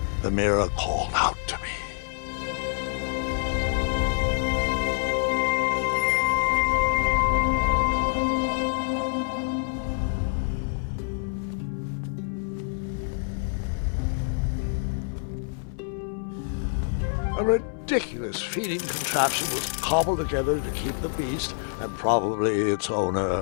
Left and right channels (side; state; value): right; silent; 57 dB below the other